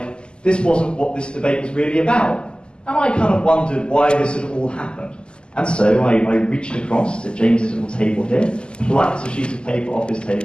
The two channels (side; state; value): right; late; 0.049 ms